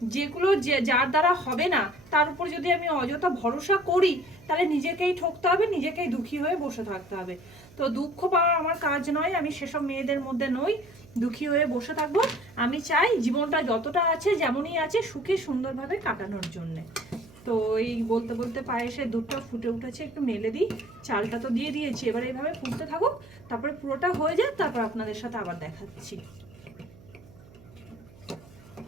যেগুলো যার দ্বারা হবে না, তার উপর যদি আমি অযথা ভরসা করি, তাহলে নিজেকেই ঠকতে হবে, নিজেকেই দুঃখী হয়ে বসে থাকতে হবে। তো দুঃখ পাওয়া আমার কাজ নয়, আমি সেসব মেয়েদের মধ্যে নই দুঃখী হয়ে বসে থাকবো। আমি চাই জীবনটা যতটা আছে যেমনই আছে সুখে সুন্দরভাবে কাটানোর জন্যে। তো এই বলতে বলতে পায়েসের দুধটা ফুটে উঠেছে, একটু মেলে দিই। চালটা তো দিয়ে দিয়েছি, এবার এইভাবে ফুটতে থাকুক, তারপরে পুরোটা হয়ে যায়, তারপর আপনাদের সাথে আবার দেখাচ্ছি।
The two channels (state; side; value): noise; right; hum, 23 dB below the sound